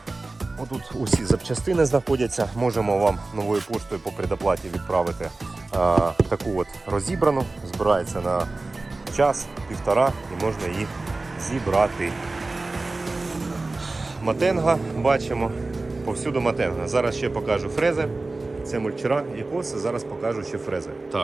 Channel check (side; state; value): left; quieter; 3.3 dB